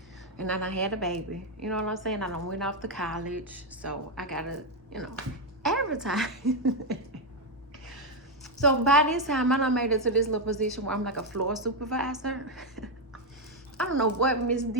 and I done had a baby. You know what I'm saying? I done went off to college, so I gotta, advertise. So by this time, I done made it to this little position where I'm like a floor supervisor. I don't know what Miss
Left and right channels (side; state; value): both; normal; correlation 0.03